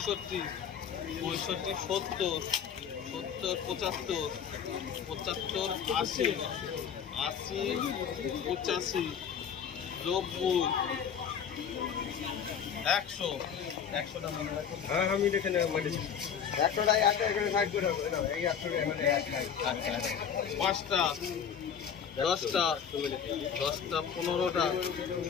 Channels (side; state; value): right; quieter; 7.7 dB